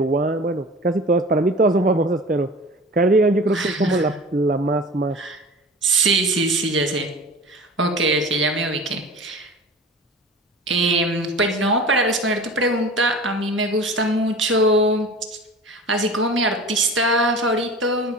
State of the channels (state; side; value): normal; both; correlation 0.38